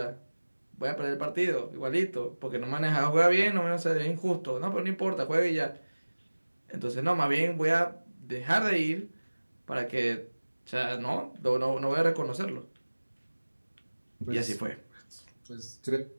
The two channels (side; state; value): both; inverted; correlation -1.00